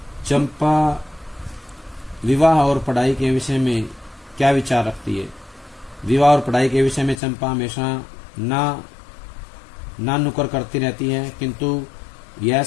चंपा विवाह और पढ़ाई के विषय में क्या विचार रखती है? विवाह और पढ़ाई के विषय में चंपा हमेशा ना नुकर करती रहती है, किंतु यह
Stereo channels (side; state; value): right; drops out; at 7.2 s